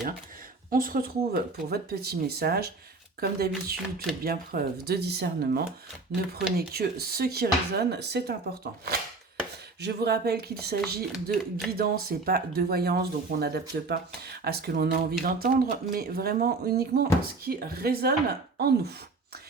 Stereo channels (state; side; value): quieter; left; 3.7 dB